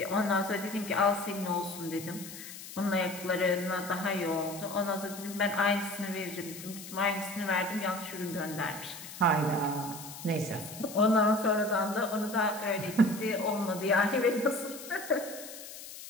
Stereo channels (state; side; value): noise; left; hiss, 13 dB below the sound